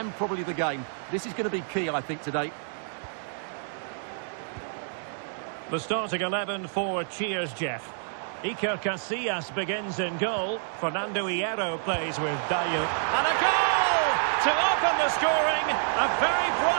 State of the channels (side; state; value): left; silent; digital silence